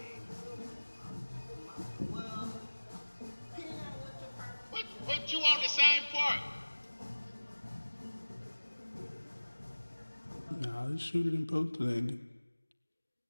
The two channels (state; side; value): inverted; both; correlation -1.00